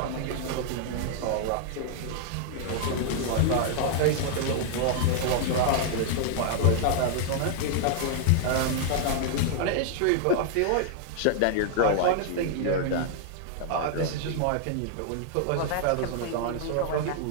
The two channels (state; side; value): different; both; correlation 0.00